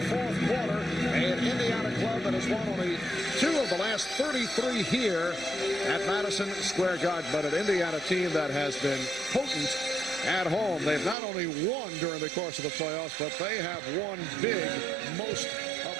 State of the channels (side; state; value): left; drops out; at 11.2 s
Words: fourth quarter. An Indiana club that has won only 2 of the last 33 here at Madison Square Garden, but an Indiana team that has been potent at home. They've not only won during the course of the playoffs, but they have won big most of